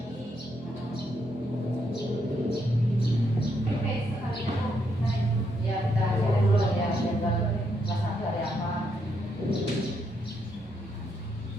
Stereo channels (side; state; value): both; normal; correlation 0.77